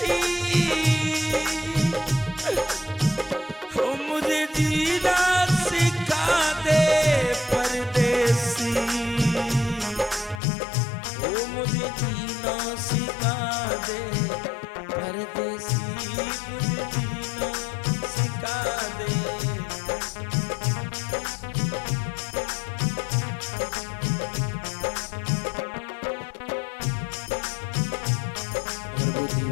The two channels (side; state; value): right; drops out; at 10.4 s